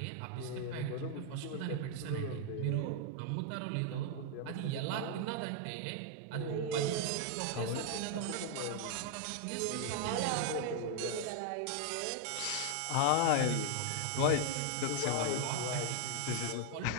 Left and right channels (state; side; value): different; both; correlation 0.00